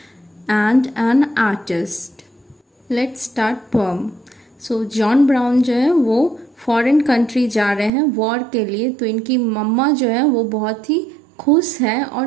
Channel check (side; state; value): left; drops out; at 7.9 s